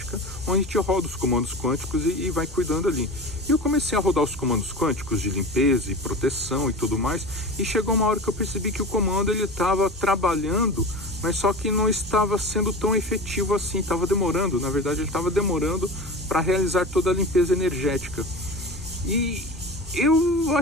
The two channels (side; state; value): both; normal; correlation 0.31